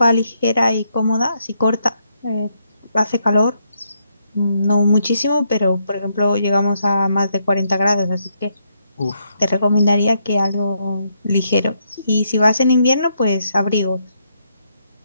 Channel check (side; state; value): both; inverted; correlation -0.77